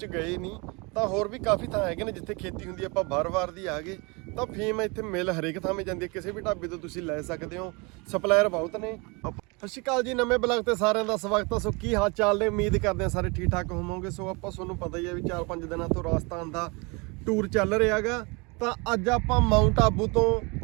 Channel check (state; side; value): quieter; left; 28.8 dB